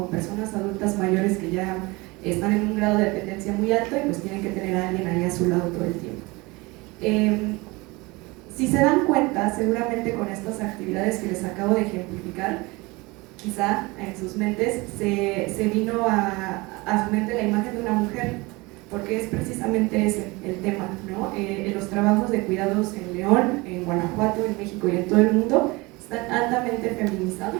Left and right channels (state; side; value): quieter; left; 24.0 dB